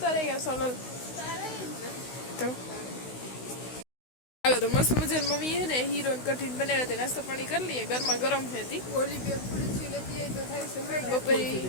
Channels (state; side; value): late; right; 16 ms